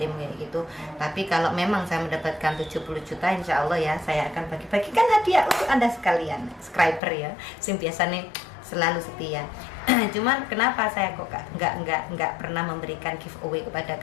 kayak gitu. Tapi kalau memang saya mendapatkan 70 juta, insya Allah ya saya akan bagi-bagikan hadiah untuk Anda sekalian, subscriber ya, yang biasa nih selalu setia. Cuman kenapa saya kok nggak pernah memberikan giveaway kepada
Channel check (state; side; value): drops out; right; at 7.0 s